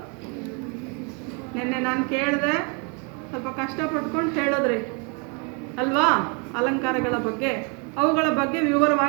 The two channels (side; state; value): left; quieter; 33.9 dB